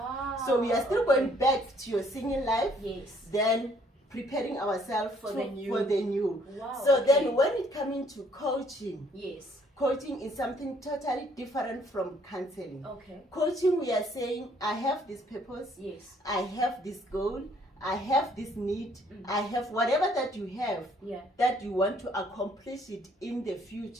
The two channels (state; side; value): normal; both; correlation 0.63